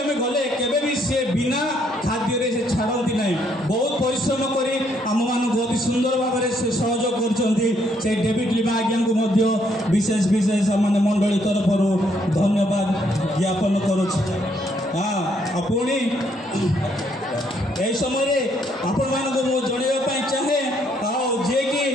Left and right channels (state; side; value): normal; both; correlation 0.71